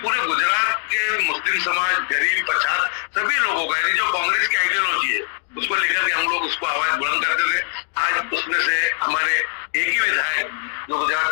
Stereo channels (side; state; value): right; silent; 65 dB below the other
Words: गुजरात के मुस्लिम समाज, गरीब, पछात सभी लोगों का, यानी जो कांग्रेस की आइडियोलॉजी है उसको लेकर के हम लोग उसको आवाज बुलंद करते थे। आज उसमें से हमारे एक ही विधायक जो गुजरात